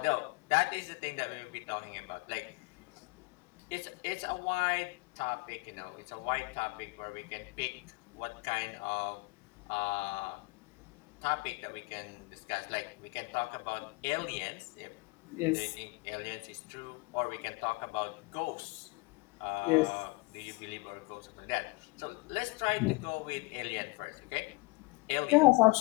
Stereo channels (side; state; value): right; quieter; 25.8 dB